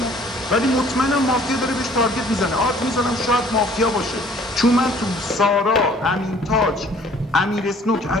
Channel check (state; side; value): normal; both; correlation 0.55